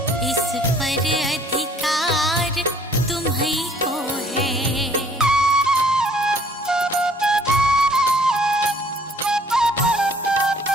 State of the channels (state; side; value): normal; both; correlation 0.58